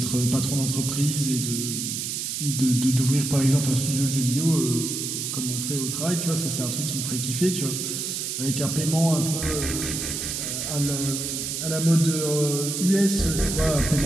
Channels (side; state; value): right; noise; hiss, 3 dB below the sound